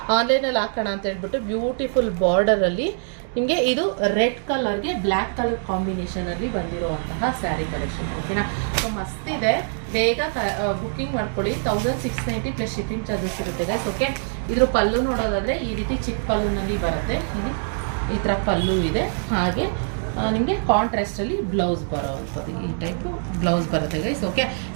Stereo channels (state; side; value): silent; left; digital silence